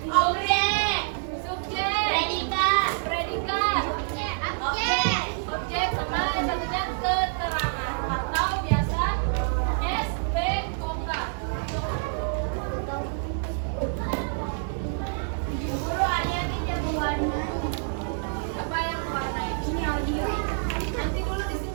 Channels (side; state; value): left; silent; 60 dB below the other